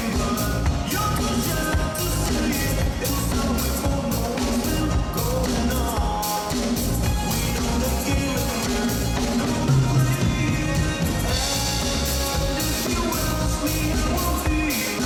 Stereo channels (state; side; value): identical; both; correlation 1.00